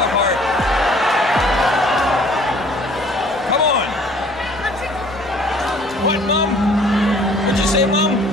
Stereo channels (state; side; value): normal; both; correlation 0.54